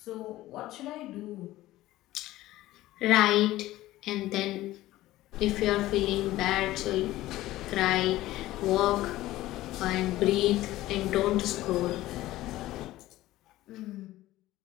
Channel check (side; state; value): right; quieter; 16.2 dB